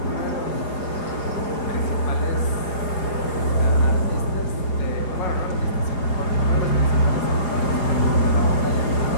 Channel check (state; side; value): late; right; 4.9 ms